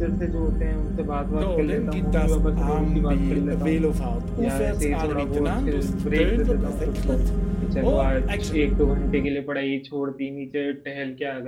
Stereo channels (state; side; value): identical; both; correlation 1.00